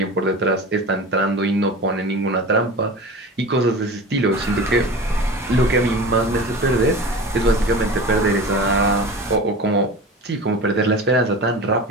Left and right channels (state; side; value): normal; both; correlation 0.33